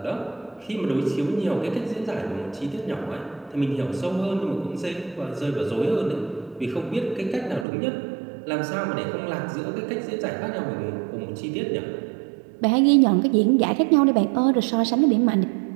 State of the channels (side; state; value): left; drops out; at 7.7 s